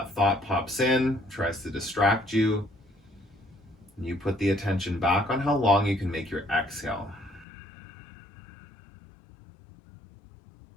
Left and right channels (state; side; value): drops out; right; at 7.5 s